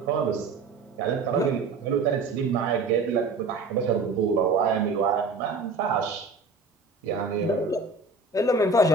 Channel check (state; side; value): quieter; left; 4.0 dB